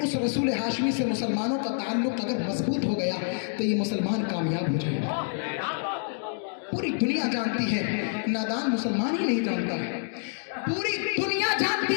रसूल हाशमी से मुसलमानों का ताल्लुक अगर मजबूत हो गया तो ये मुसलमान कामयाब हो जाएगा। पूरी दुनिया जानती है, नादान मुसलमान ही नहीं जानता है। पूरी दुनिया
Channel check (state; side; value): silent; right; digital silence